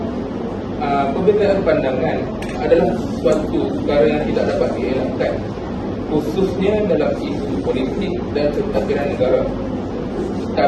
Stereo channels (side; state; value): both; identical; correlation 1.00